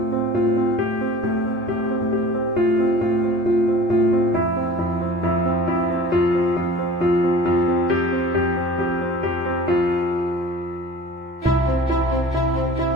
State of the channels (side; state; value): both; normal; correlation 0.41